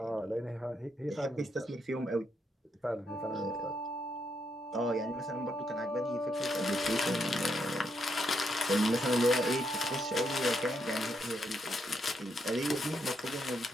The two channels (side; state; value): both; normal; correlation 0.78